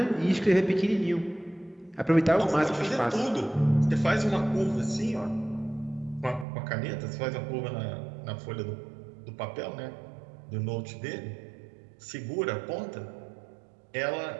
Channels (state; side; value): drops out; left; at 6.5 s